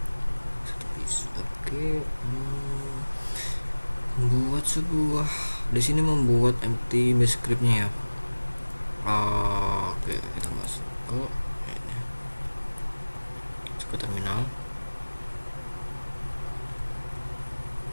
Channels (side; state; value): both; inverted; correlation -1.00